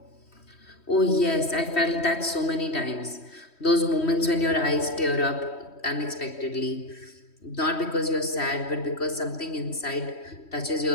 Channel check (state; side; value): late; right; 3.1 ms